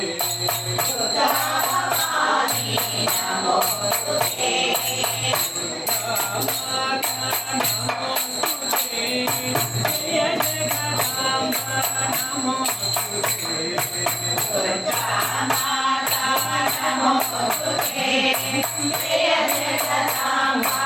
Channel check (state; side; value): identical; both; correlation 1.00